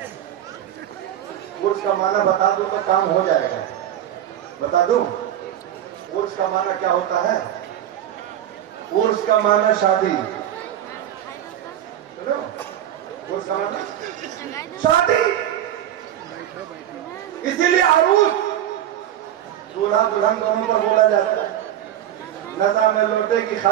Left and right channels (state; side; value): quieter; left; 11.4 dB